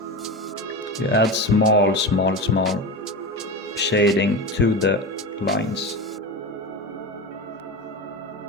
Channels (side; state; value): both; normal; correlation 0.24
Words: You add small shading to the lines.